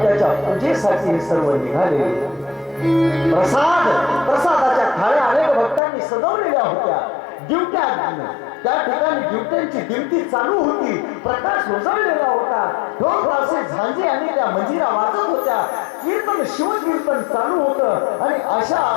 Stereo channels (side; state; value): right; drops out; at 5.8 s